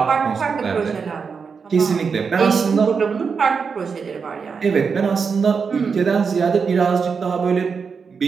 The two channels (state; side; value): quieter; left; 5.6 dB